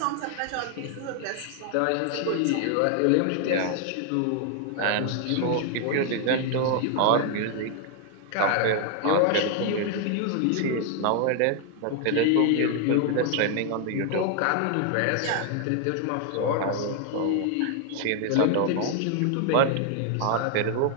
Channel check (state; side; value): different; both; correlation 0.00